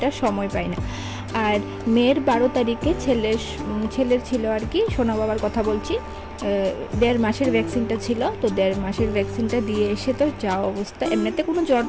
সময় পাই না। আর মেয়ের 12 তারিখে ছেলের ছিল আর কি, সোনা বাবার কথা বলছি, 1.5 মাসের ভ্যাকসিনটা ছিল। তো 1.5 মাসের ভ্যাকসিনটা দিয়ে এসে তো যা অবস্থা, এমনিতে কোনো জ্বর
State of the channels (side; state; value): both; identical; correlation 1.00